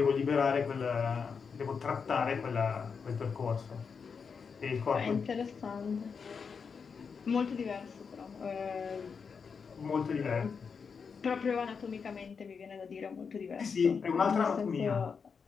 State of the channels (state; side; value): quieter; right; 5.8 dB